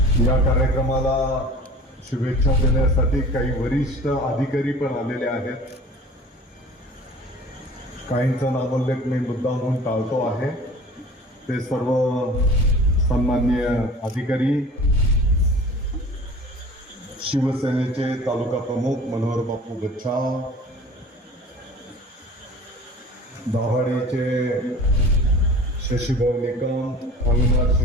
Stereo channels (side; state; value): both; normal; correlation 0.43